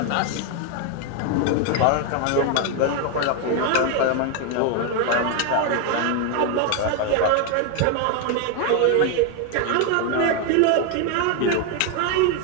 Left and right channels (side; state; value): both; different; correlation 0.01